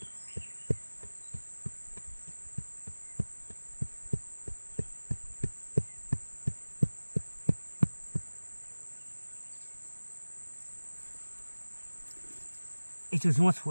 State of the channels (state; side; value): inverted; both; correlation -1.00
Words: ấy chứ chúng ta